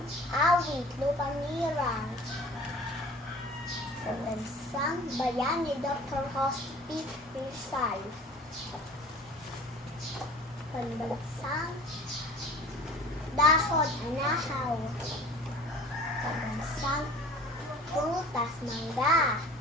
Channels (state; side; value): normal; both; correlation 0.45